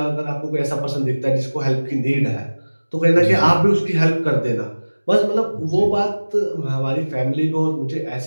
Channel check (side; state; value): both; inverted; correlation -1.00